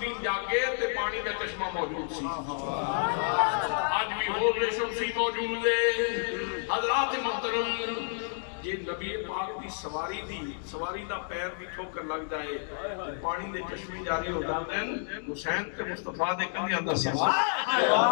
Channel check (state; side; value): silent; right; digital silence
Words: جاگے تے پانی کا چشمہ موجود سی آج بھی حوض شمسی موجود ہے حضرات محترم یہ نبی پاک دی سواری دا پیر دی ٹھوکر لگ جائے پانی دے چشمے جاری ہو جاتے ہیں حسین تے مصطفیٰ دے کندھے اندر